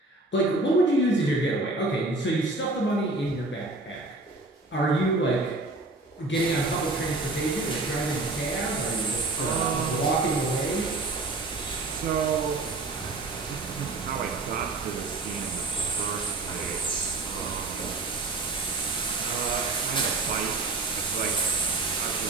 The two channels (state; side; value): quieter; left; 3.1 dB